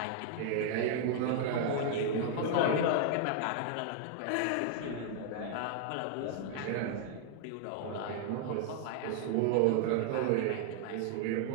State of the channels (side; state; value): both; different; correlation -0.01